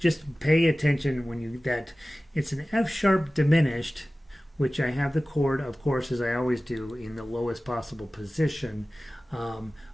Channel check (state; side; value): normal; both; correlation 0.97